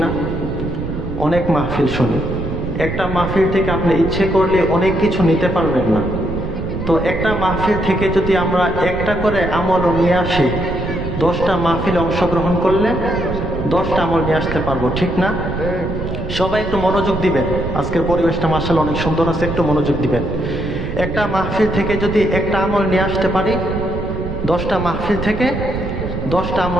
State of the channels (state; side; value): noise; right; rumble, 6 dB below the sound